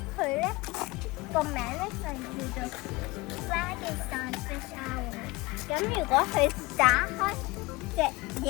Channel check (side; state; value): right; quieter; 22.4 dB